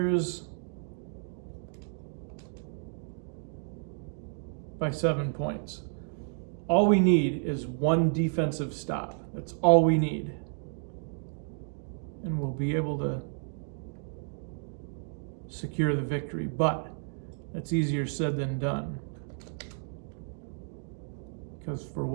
by 7 points. All we need is one defensive stop. That's all we need. And we'll be able to secure the victory. But that's easier said than done. Because for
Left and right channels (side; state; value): left; silent; 57 dB below the other